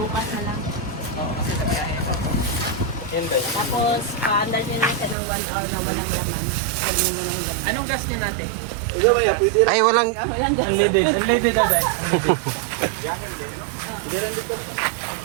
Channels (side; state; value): left; drops out; at 5.2 s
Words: na lang. kasi sa biyahe. Yan ba yun? Tapos, paandar nyo na siya ng 1 hour na walang laman. Pwede mo lang laman. Anong gas niya natin? Ay, walang... Walang gas. Unleaded na ba?